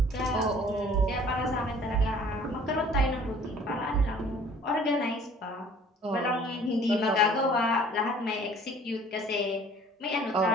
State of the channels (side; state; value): both; normal; correlation 0.52